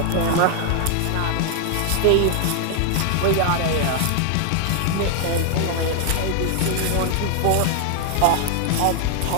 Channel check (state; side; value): different; both; correlation 0.00